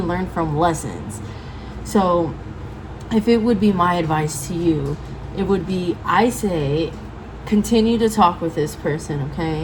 from lessons. So if it would be my advice to you, it would be, I say, continue to talk with this person,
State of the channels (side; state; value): both; identical; correlation 1.00